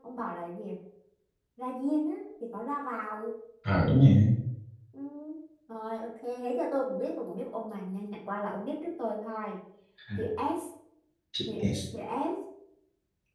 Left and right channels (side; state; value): both; identical; correlation 1.00